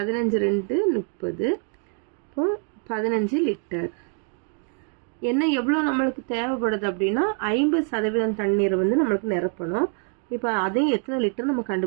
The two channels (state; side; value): quieter; left; 40.0 dB